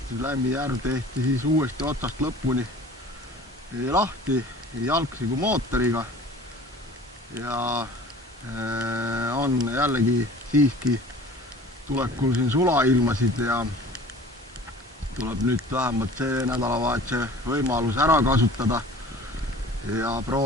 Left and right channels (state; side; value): normal; both; correlation 0.45